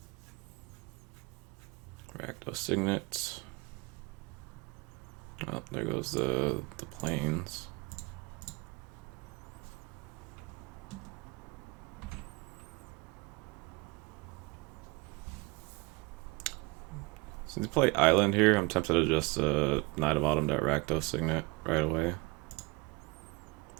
Rakdos Signet. Oh, there goes the planes. Since you play Island here, I'm tempted to just Knight of Autumn that Rakdos Signet right away.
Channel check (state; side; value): quieter; left; 25.5 dB